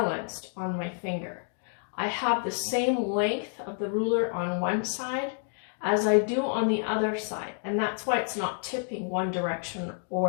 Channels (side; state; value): right; silent; 59 dB below the other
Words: on my finger. I have the same length of the ruler on one side as I do on the other side, and that's why it's not tipping one direction